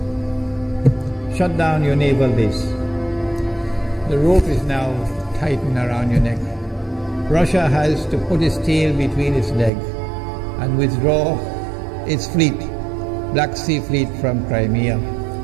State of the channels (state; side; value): drops out; left; at 9.7 s